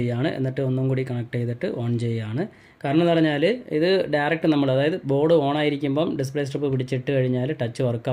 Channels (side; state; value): both; identical; correlation 1.00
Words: എന്നിട്ട് ഒന്നും കൂടി കണക്ട് ചെയ്തിട്ട് ഓൺ ചെയ്യുകയാണ്. കാരണം എന്ന് പറഞ്ഞാൽ ഇത് ഡയറക്റ്റ് നമ്മൾ, അതായത് ബോർഡ് ഓണായിരിക്കുമ്പം ഡിസ്പ്ലേ സ്ട്രിപ്പ് പിടിച്ചിട്ട് കഴിഞ്ഞാൽ ടച്ച്